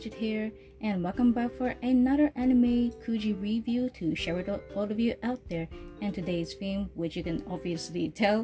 here and welcome back for another anime Kuji review to share with all of you out there. And today's theme, which you can obviously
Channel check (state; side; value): identical; both; correlation 1.00